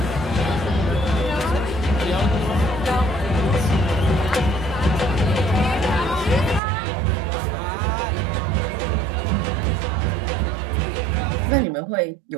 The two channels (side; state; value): left; drops out; at 6.6 s